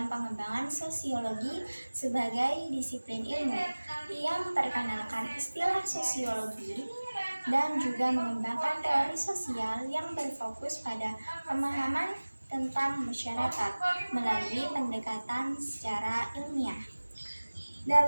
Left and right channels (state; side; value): inverted; both; correlation -1.00